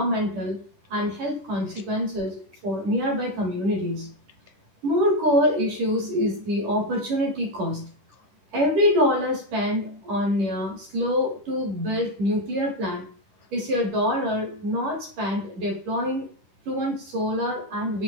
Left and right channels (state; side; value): late; left; 10 ms